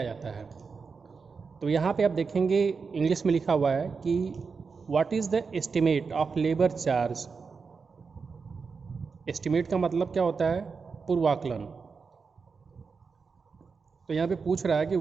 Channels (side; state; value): left; quieter; 5.1 dB